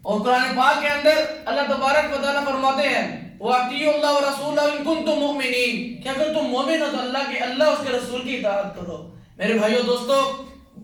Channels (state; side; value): identical; both; correlation 1.00